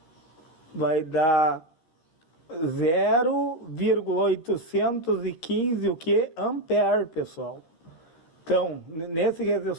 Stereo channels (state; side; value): late; right; 13 ms